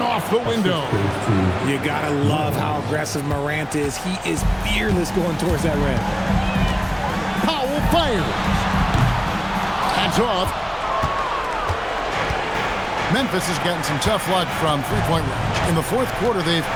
off the window. You gotta love how aggressive Morant is. He is fearless going towards that rim. Powell fires. That's off. Memphis has gotten some tough luck from three-point range. In the 4th quarter, they've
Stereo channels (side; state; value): both; identical; correlation 1.00